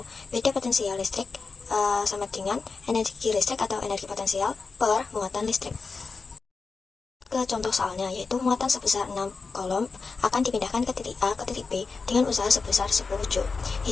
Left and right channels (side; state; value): right; quieter; 4.5 dB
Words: beda potensial listrik sama dengan energi listrik atau energi potensial per muatan listrik. Ke contoh soalnya, yaitu muatan sebesar 6 kolom akan dipindahkan ke titik A ke titik B dengan usaha sebesar 10 Joule.